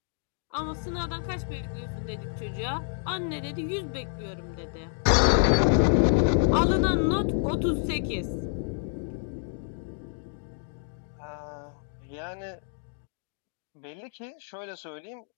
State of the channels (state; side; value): silent; right; digital silence